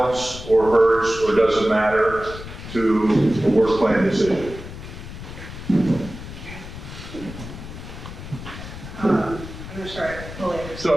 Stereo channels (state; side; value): noise; left; rumble, 12 dB below the sound